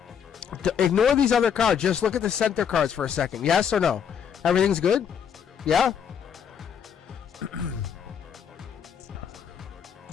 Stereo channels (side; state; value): right; quieter; 7.7 dB